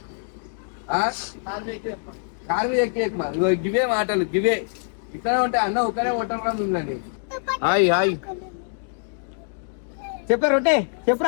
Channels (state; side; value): silent; right; digital silence